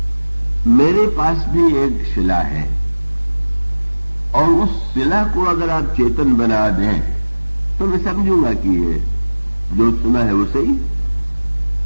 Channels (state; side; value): inverted; both; correlation -1.00